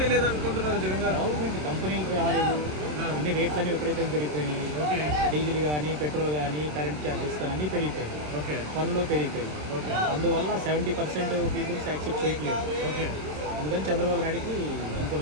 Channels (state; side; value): late; left; 27 ms